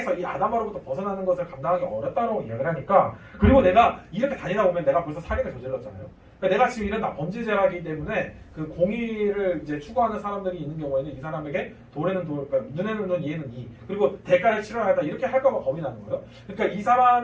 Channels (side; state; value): both; identical; correlation 1.00